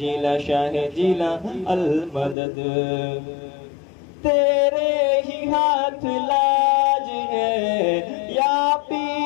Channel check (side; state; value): right; drops out; at 2.4 s